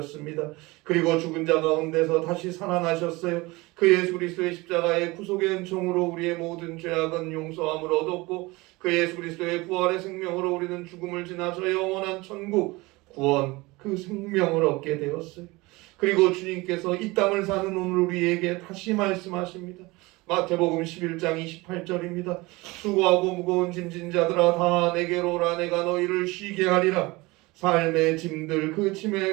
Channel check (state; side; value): quieter; left; 22.6 dB